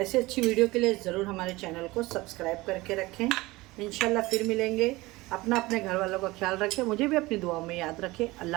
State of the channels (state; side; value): quieter; left; 20.6 dB